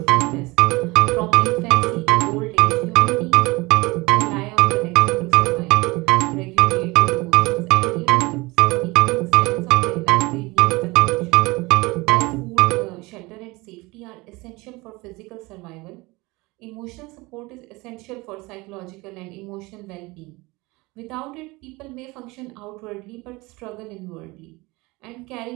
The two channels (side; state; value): left; quieter; 23.1 dB